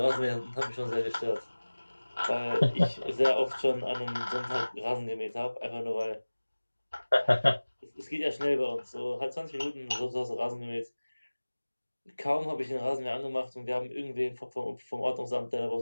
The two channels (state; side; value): inverted; both; correlation -1.00